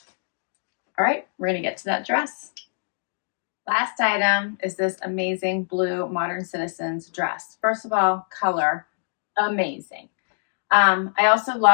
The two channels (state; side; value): silent; right; digital silence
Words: All right, we're gonna get to that dress. Last item is this amazing blue Modern Citizens dress. First of all, color, amazing. I also